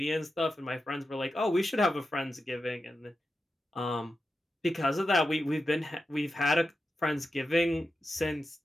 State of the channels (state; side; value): normal; both; correlation 0.90